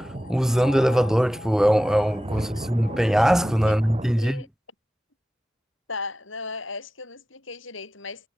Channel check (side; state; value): both; normal; correlation 0.94